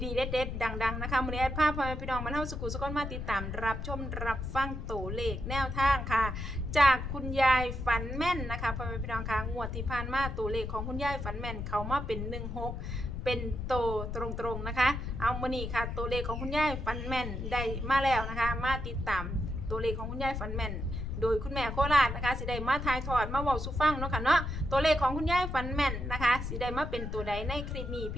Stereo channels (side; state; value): left; noise; rumble, 5 dB below the sound